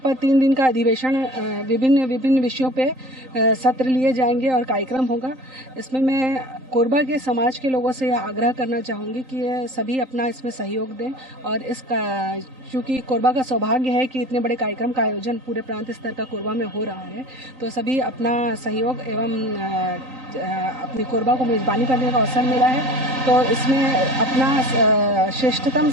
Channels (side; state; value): left; late; 3.8 ms